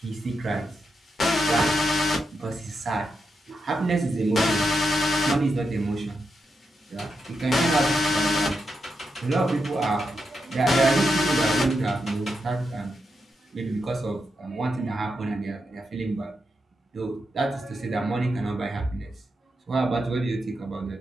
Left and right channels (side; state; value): both; normal; correlation 0.86